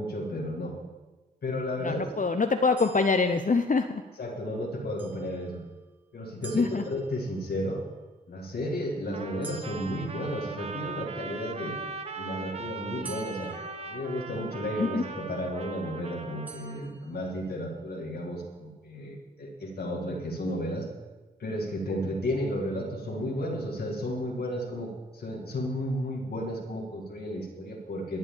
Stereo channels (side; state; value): both; normal; correlation 0.54